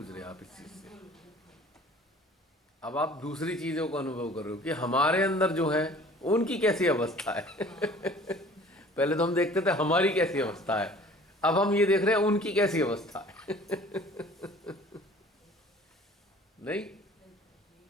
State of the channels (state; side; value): normal; both; correlation 0.49